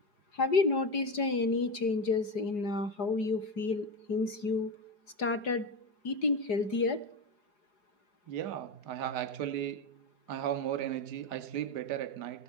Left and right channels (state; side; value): late; right; 4.8 ms